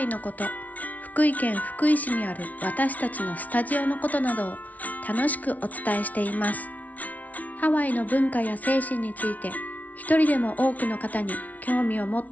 のこと、福井県福井市にある私たちのスタジオのことなどを楽しくお伝えしています。ハワイの文化や精神について一人でも多くの方に興味を持っ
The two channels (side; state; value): right; late; 0.072 ms